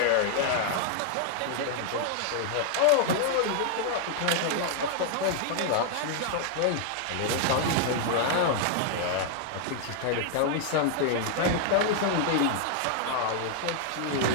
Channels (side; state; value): both; different; correlation 0.00